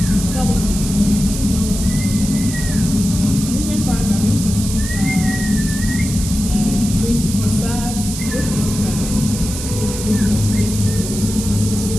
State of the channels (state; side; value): noise; right; hiss, 8 dB below the sound